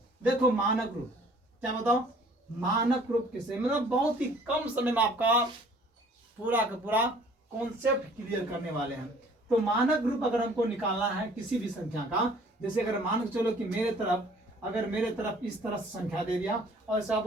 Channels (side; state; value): both; normal; correlation 0.54